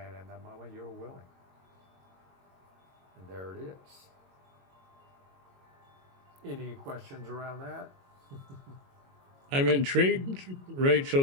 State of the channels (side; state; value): left; late; 22 ms